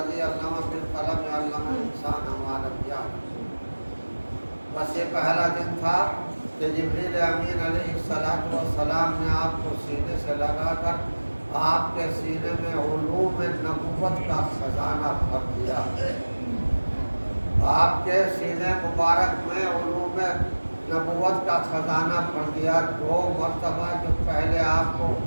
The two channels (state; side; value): inverted; both; correlation -1.00